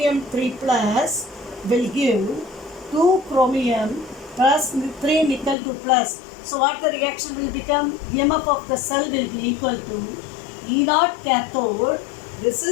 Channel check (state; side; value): drops out; right; at 5.6 s